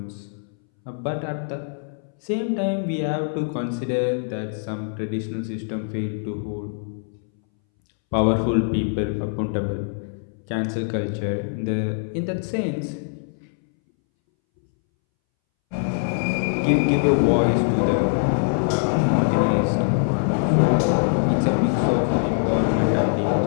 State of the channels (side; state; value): right; silent; 62 dB below the other